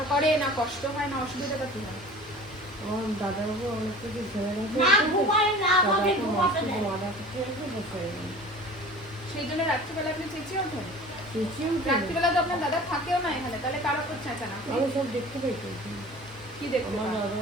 করে না, কষ্ট হয় না, অসুবিধাটা কি হয়? আমার দাদাবাবু অনেক কিছু ছেড়ে গেছে, না ঘুমাই না, আমাকে দাদাকে ঘুমাতে মাসে দেয়। মারা কিছু রেখে বসে গেছে। সেই জন্য রাত্রিবেলা আপনি চেঁচিয়ে ওঠেন? চেঁচিয়ে উঠে রাত্রিবেলা তো আপনার দাদা থাকেও না এখানে, তাহলে কার ওপর চেঁচান আপনি? আমি সব দেখতে পাইছি। কি দেখতে আমার পান?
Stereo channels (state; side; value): normal; both; correlation 0.41